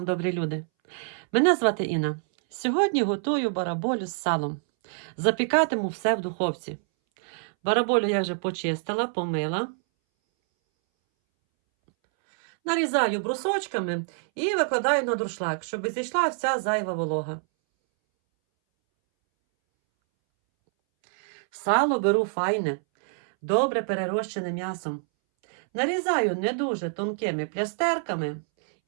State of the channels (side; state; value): left; silent; 61 dB below the other